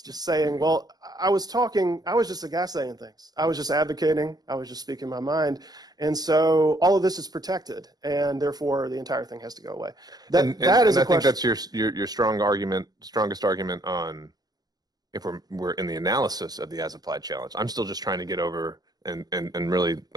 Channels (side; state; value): left; late; 0.19 ms